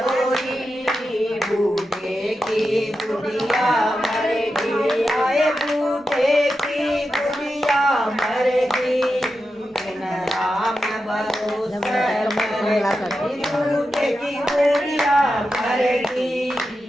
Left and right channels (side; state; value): both; normal; correlation 0.90